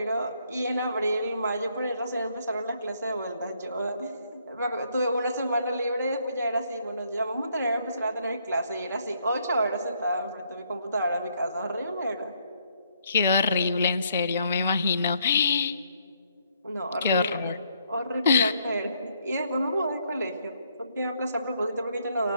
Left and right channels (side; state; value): both; inverted; correlation -0.71